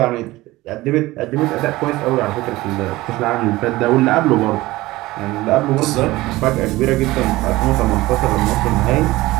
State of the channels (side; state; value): left; quieter; 18.7 dB